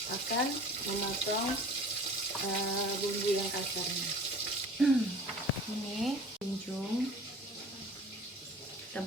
akan memotong bumbu yang kasarnya. Ini kincung, kita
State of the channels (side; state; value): both; normal; correlation 0.44